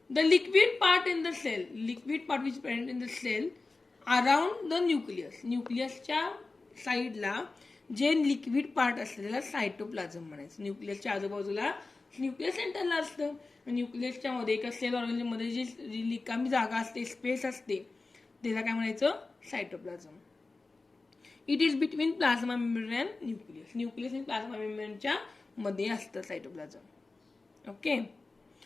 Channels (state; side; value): quieter; right; 3.6 dB